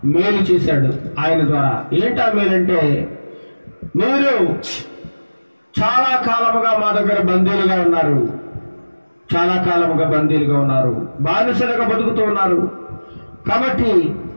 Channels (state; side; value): inverted; both; correlation -1.00